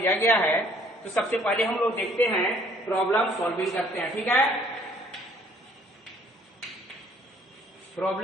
गया है। तो सबसे पहले हम लोग देखते हैं, प्रॉब्लम सॉल्विंग करते हैं। ठीक है,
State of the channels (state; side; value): normal; both; correlation 0.60